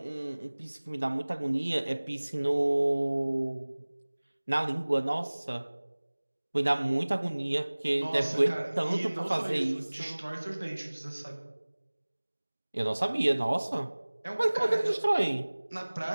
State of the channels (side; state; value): both; inverted; correlation -1.00